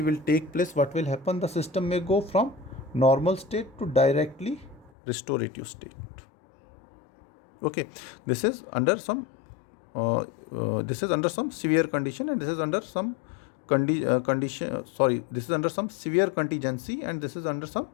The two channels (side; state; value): right; drops out; at 4.9 s